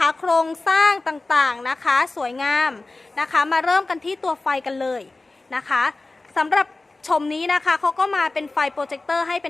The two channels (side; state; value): right; quieter; 3.2 dB